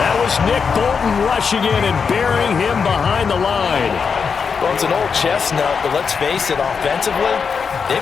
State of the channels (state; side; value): quieter; right; 5.8 dB